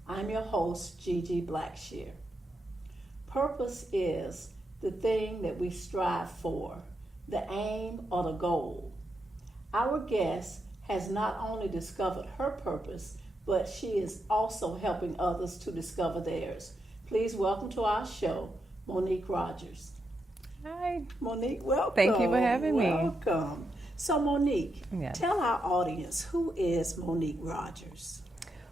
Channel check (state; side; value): normal; both; correlation 0.83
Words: I'm your host, Gigi Blackshear. Purpose is the thing that we strive for, the aim or the goal. Our guest has not only discovered her purpose, but she is also helping others to discover theirs. Please welcome to our show, Monique Rogers. Hi. Monique, welcome. Thank you for having me. Welcome. So Monique, Yes. Tell our audience, who is Monique Rogers?